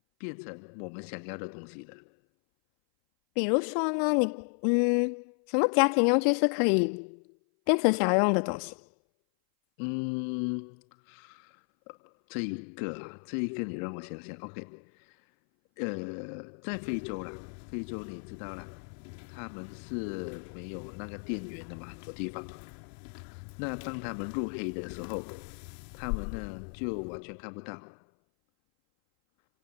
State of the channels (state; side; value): silent; right; 56 dB below the other